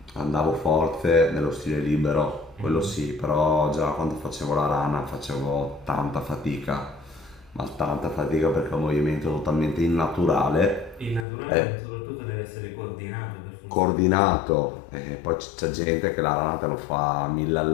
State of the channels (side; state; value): right; drops out; at 11.2 s